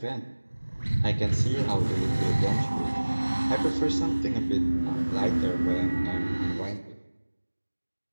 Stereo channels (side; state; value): both; inverted; correlation -1.00